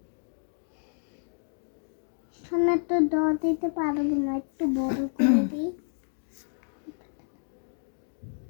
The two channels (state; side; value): silent; right; digital silence